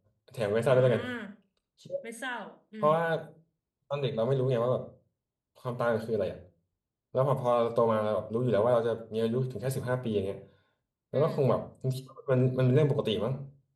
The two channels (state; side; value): identical; both; correlation 1.00